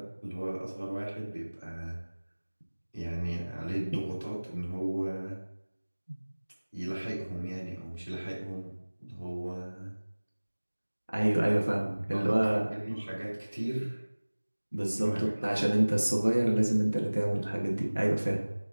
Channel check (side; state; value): both; inverted; correlation -1.00